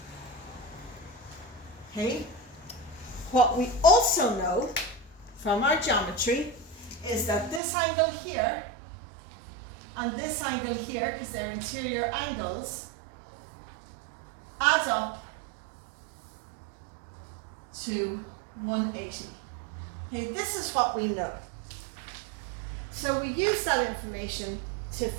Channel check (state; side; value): drops out; left; at 7.6 s